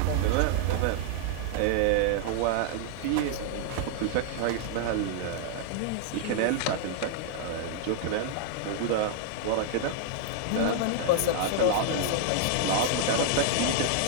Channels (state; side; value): different; both; correlation -0.01